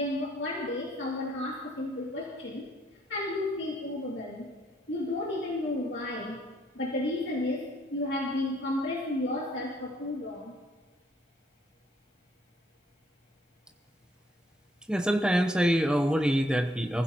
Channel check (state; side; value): normal; both; correlation 0.68